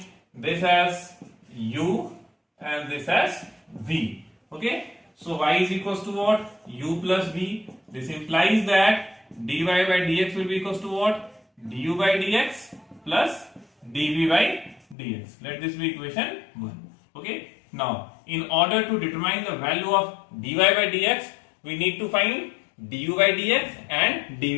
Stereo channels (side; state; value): right; drops out; at 15.0 s